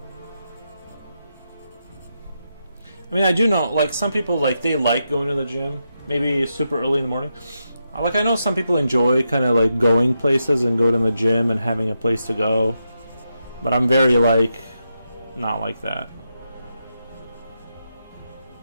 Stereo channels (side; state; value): both; inverted; correlation -0.85